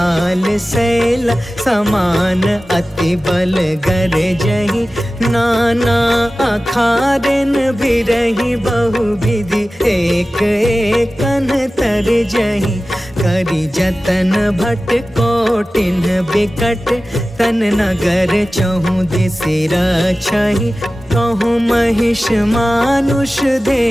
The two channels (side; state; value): both; normal; correlation 0.96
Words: शैल समान अति बल गरजहि, नाना अखारन बिरहि। बहु विधि एक एकन तरजहि, करि जतन भट कोटिन बिकट। तन नगर चहु दिसि रक्षहि, कहूँ महिष मानुष